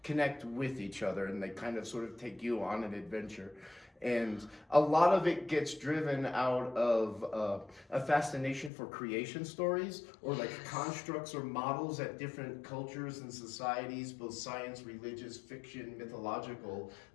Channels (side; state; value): right; drops out; at 8.7 s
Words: connect with each other, and they kind of sort of take you on an adventure. And a lot of it gets driven out of a fascination for creation stories, or like constructs or models that different cultures and societies, both science, religious, fiction, mythological,